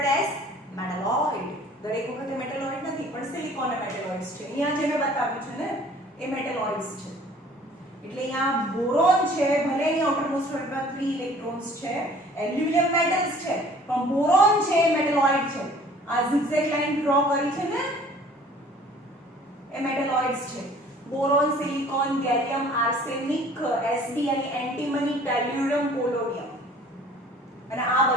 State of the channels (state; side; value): normal; both; correlation 0.52